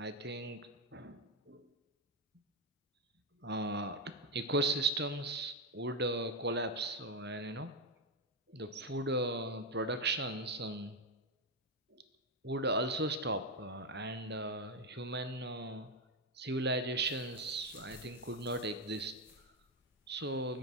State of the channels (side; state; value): both; normal; correlation 0.07